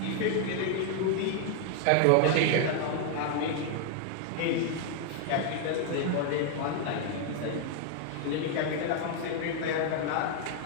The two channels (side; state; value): both; different; correlation 0.00